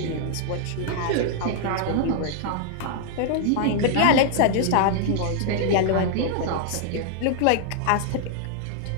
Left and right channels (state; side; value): different; both; correlation -0.01